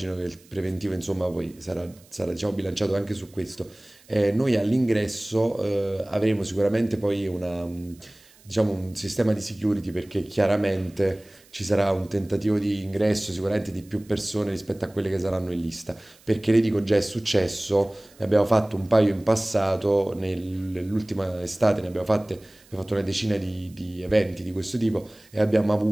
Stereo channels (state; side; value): noise; right; hiss, 27 dB below the sound